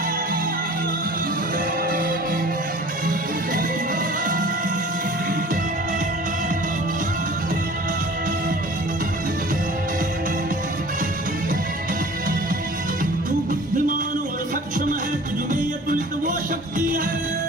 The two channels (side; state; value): both; normal; correlation 0.45